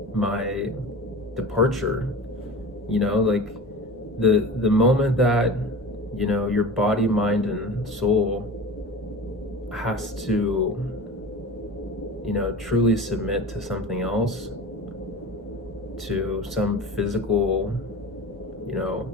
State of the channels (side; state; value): both; normal; correlation 0.34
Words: my departure. Like the moment that, your body, mind, and soul has to, truly submit to something else, to some physical,